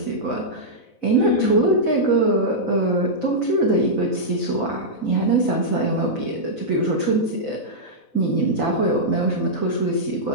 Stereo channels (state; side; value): late; right; 4.0 ms